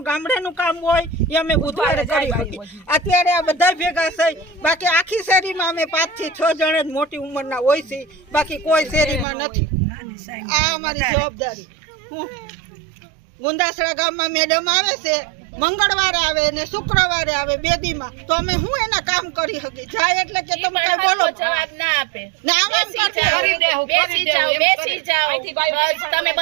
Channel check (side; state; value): left; drops out; at 9.2 s